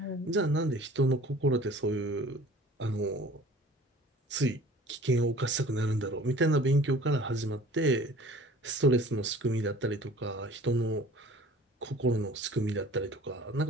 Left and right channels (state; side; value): normal; both; correlation 0.47